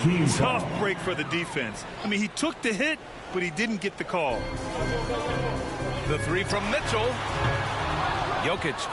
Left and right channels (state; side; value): identical; both; correlation 1.00